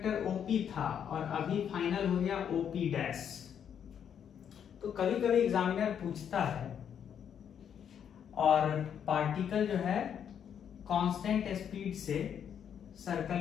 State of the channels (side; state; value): right; quieter; 8.5 dB